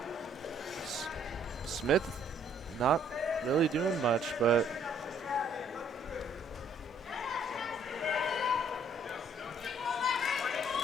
Smith not really doing much, but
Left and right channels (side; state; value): both; normal; correlation 0.64